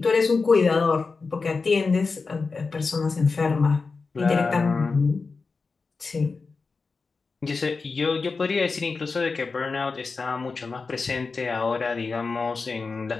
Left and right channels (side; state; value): right; quieter; 4.4 dB